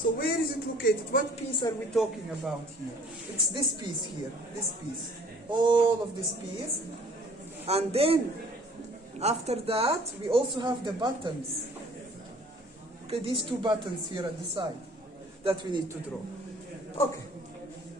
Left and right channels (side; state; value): both; normal; correlation 0.54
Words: where is it located? What piece are we talking about here? It's this piece here, this piece. All of this piece. And then, after that, we also have the buttons. Okay, these two buttons here at the side that we need to draw. Okay,